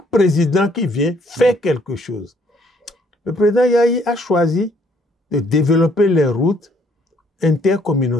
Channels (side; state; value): both; normal; correlation 0.65